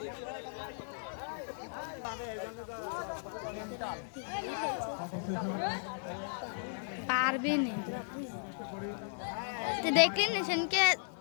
পারবে না, দেখলেন সেনকে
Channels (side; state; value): right; silent; digital silence